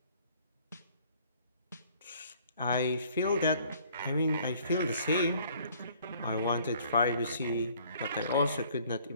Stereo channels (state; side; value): inverted; both; correlation -0.58